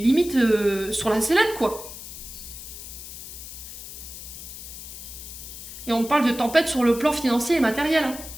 sur la sellette, quoi. Et on parle de tempête sur le plan financier et matériel. Hein.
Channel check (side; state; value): left; noise; hiss, 12 dB below the sound